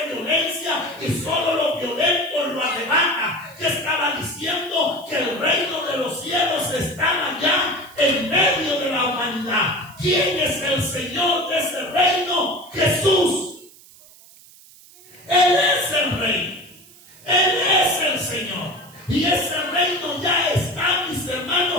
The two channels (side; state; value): right; noise; hiss, 23 dB below the sound